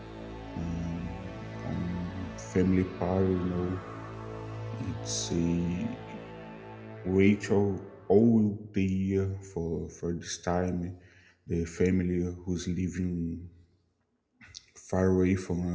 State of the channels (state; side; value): identical; both; correlation 1.00